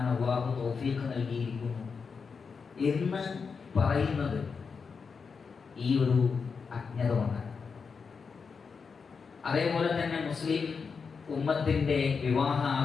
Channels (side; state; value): right; quieter; 5.4 dB